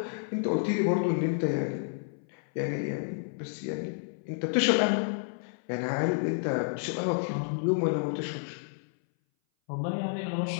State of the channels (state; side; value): silent; right; 58 dB below the other